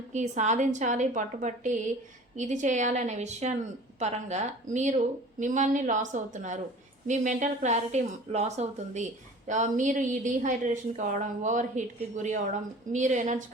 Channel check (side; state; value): both; normal; correlation 0.43